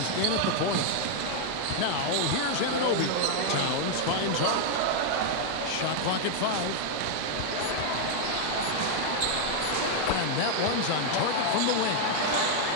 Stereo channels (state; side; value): different; both; correlation 0.00